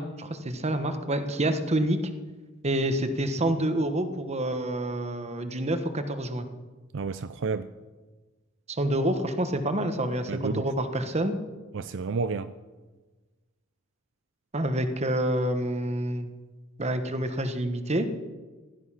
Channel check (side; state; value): both; normal; correlation 0.52